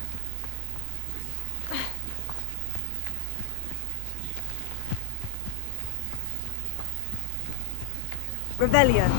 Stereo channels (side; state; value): both; different; correlation 0.00